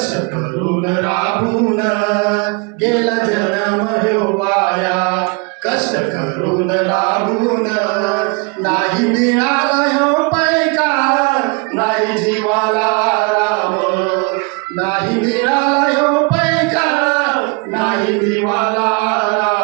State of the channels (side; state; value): left; quieter; 31.8 dB